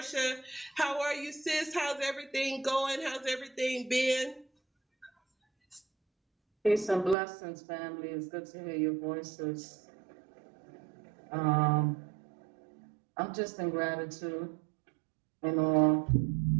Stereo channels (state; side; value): drops out; left; at 7.2 s